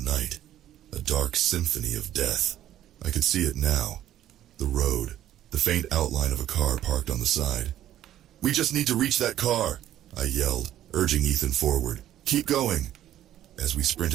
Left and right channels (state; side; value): quieter; left; 12.2 dB